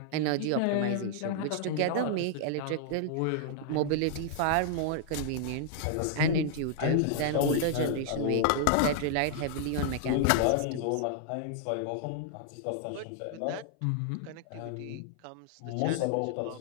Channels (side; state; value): both; different; correlation -0.01